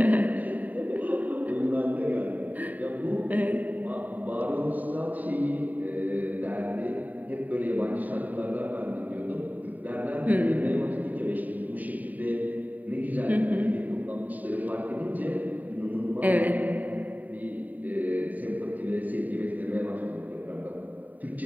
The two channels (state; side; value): late; left; 0.078 ms